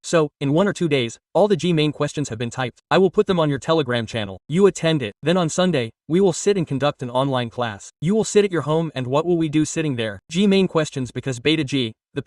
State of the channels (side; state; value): both; identical; correlation 1.00